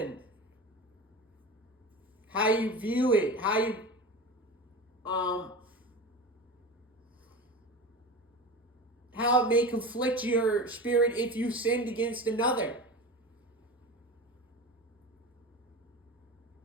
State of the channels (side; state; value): both; normal; correlation 0.29